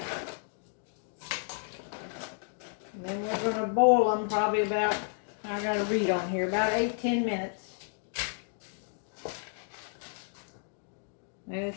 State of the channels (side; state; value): right; silent; 56 dB below the other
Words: And then we're going to boil them probably about, I got to read on here, about 8-10 minutes.